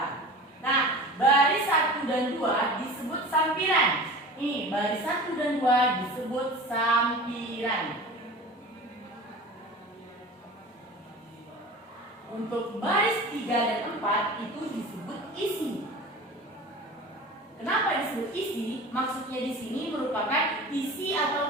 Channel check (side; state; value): both; normal; correlation 0.36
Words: Nah, baris 1 dan 2 disebut sampiran. Ini baris 1 dan 2 disebut sampiran. Untuk baris 3 dan 4 itu disebut isi. Kenapa disebut isi? Maksudnya di sini merupakan isi